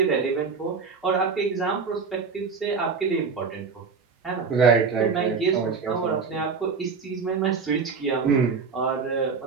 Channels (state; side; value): quieter; left; 5.3 dB